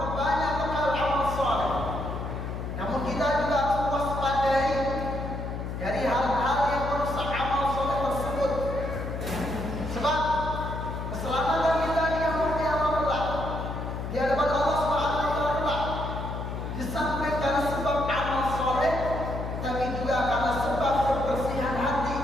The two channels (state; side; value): noise; left; hum, 5 dB below the sound